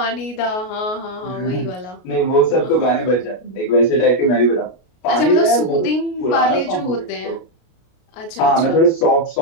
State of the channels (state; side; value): late; right; 33 ms